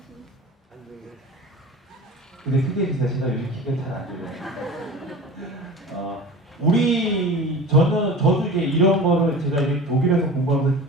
근데 크게 비싸시다. 요즘 키가 잘 안 들려요. 저도 이제 이런 거를 제가 이제 독일에서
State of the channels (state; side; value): normal; both; correlation 0.35